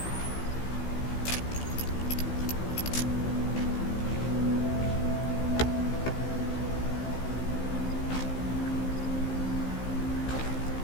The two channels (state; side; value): late; right; 16 ms